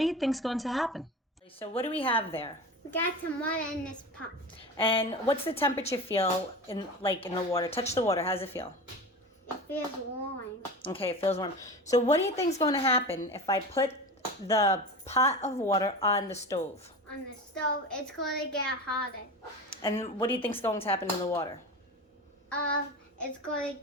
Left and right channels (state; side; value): normal; both; correlation 0.29